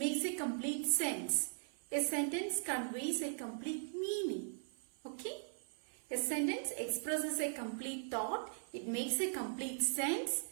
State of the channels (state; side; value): silent; left; 51 dB below the other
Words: a complete sense. A sentence conveys a complete meaning. Okay? A sentence expresses a complete thought. It makes a complete sense.